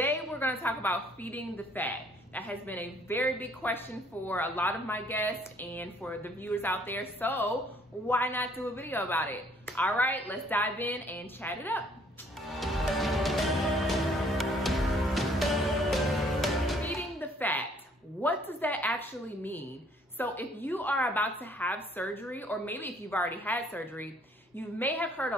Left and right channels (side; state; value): both; normal; correlation 0.62